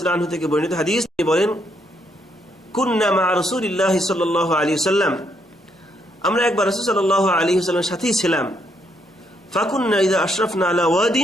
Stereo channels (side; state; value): both; normal; correlation 0.75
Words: তাআলা আনহু থেকে বর্ণিত হাদিস। তিনি বলেন, কুন্না মা রাসূলিল্লাহি সাল্লাল্লাহু আলাইহি ওয়াসাল্লাম, আমরা একবার রাসূল সাল্লাল্লাহু আলাইহি ওয়াসাল্লামের সাথেই ছিলাম। ফাকুন্না ইযা আশরাফনা আলা